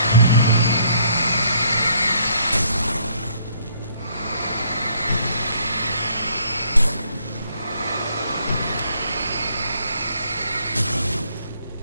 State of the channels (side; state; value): both; inverted; correlation -0.65